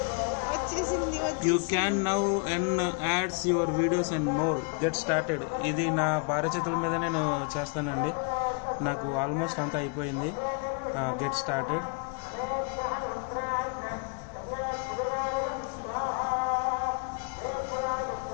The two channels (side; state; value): right; quieter; 37.1 dB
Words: You can now earn ads your videos and more. Get started. ఇది నా భార్య చేతుల మీద నేను చేస్తానండి. నాకు ఆల్మోస్ట్ అంతా అయిపోయింది. Get started.